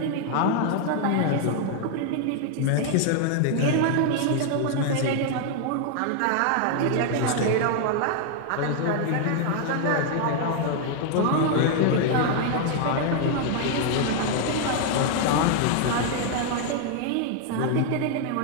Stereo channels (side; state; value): both; different; correlation 0.00